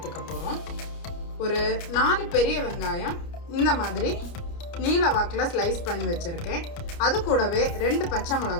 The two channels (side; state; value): right; late; 29 ms